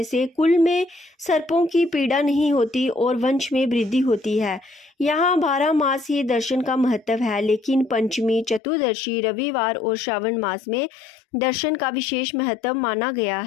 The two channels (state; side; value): drops out; right; at 8.6 s